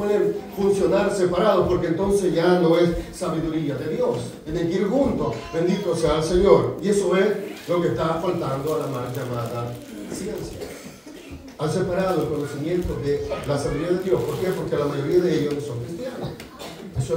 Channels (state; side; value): identical; both; correlation 1.00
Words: funcionar separados porque entonces ya no es sabiduría de Dios. Tienen que ir juntos. Bendito sea el Señor. Y eso es lo que está faltando a la mal llamada ciencia. Han separado el conocimiento de la sabiduría de Dios. ¿Por qué? Porque la mayoría de ellos no son cristianos. Eso